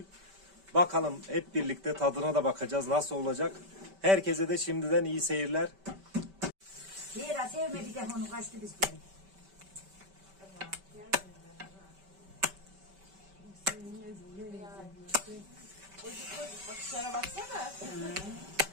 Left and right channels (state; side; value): late; left; 5.2 ms